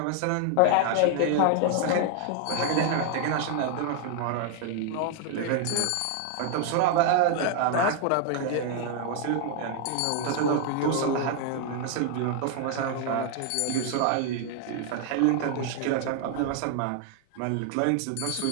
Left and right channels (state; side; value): different; both; correlation 0.00